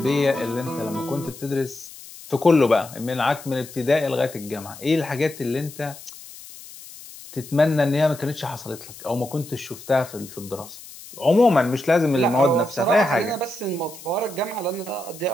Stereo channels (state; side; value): noise; left; hiss, 17 dB below the sound